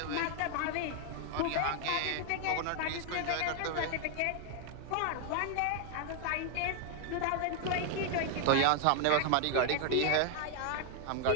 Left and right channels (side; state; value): both; different; correlation 0.00